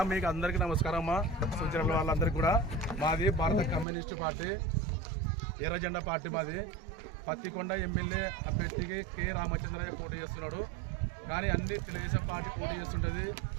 మీకు అందరికీ నమస్కారం అమ్మా. సూచన వాళ్ళందరికీ కూడా మాది భారత కమ్యూనిస్టు పార్టీ ఎర్ర జెండా పార్టీ మాది. పత్తికొండ ఎమ్మెల్యే అభ్యర్థికి కె రామచంద్రయ్య పోటీ చేస్తున్నాడు. కానీ అన్ని తెలుగుదేశం పార్టీ పోటీ చేస్తుంటుంది,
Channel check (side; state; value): left; drops out; at 3.9 s